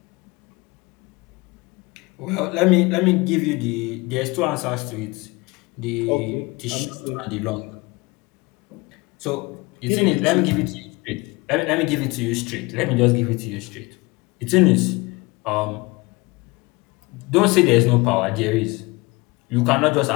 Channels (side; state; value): right; quieter; 24.4 dB